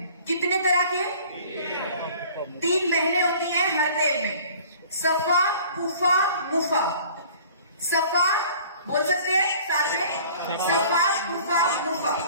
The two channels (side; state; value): both; inverted; correlation -0.49